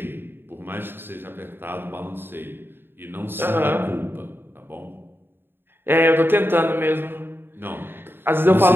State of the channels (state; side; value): late; left; 0.10 ms